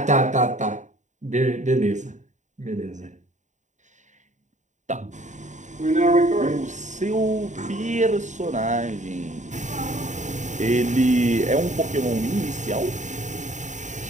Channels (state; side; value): late; left; 0.35 ms